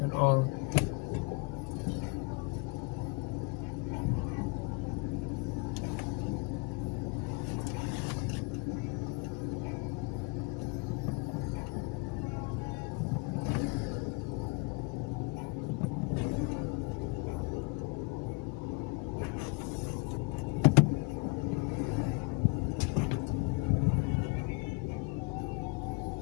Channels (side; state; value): right; quieter; 27.3 dB